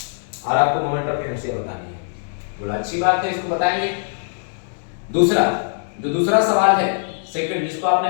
और आपको मोमेंट ऑफ इनर्शिया बतानी है। बोला अच्छी बात है, इसको बताएंगे। दूसरा, जो दूसरा सवाल है सेकंड, जिसको आपने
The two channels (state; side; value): silent; right; digital silence